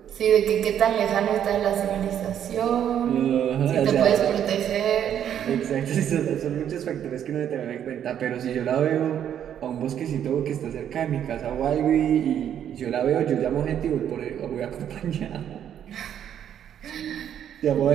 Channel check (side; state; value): left; quieter; 9.7 dB